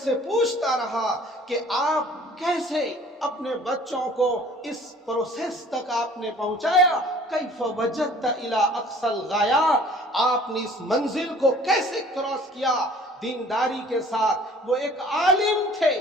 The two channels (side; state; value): both; normal; correlation 0.51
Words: پوچھتا رہا کہ آپ کیسے اپنے بچوں کو اس پروسیس تک آپ نے پہنچایا، کیف وجدت الی اقصی الغایات، آپ نے اس منزل کو کیسے کراس کیا دینداری کے ساتھ۔ وہ ایک عالم تھے